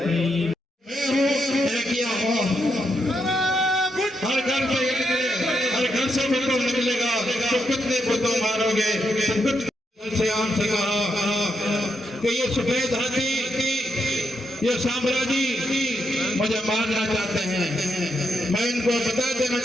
हर घर से भुट्टो निकलेगा तो कितने भुट्टो मारोगे से आम से कहा कि ये सफेद हाथी ये साम्राज्य मुझे मारना चाहते हैं। मैं इनको बता देना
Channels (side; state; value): both; normal; correlation 0.81